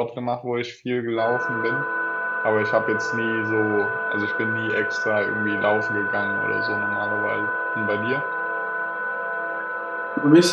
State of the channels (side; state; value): both; identical; correlation 1.00